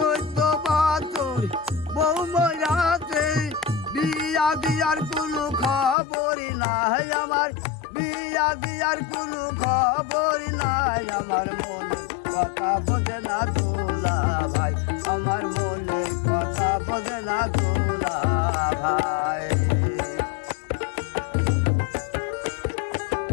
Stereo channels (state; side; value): drops out; right; at 6.0 s